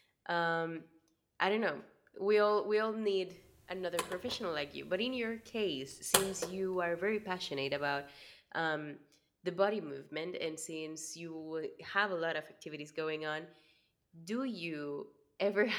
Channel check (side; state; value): both; identical; correlation 1.00